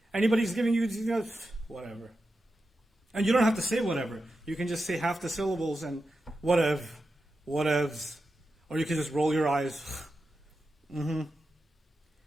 Anybody's giving you, whatever. And you don't have to say whatever. You can just say half the syllables and whatevs. Or you can just roll your eyes. Mm-hmm.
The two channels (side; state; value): both; normal; correlation 0.90